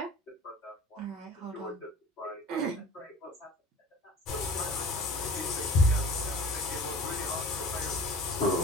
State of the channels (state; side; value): normal; both; correlation 0.43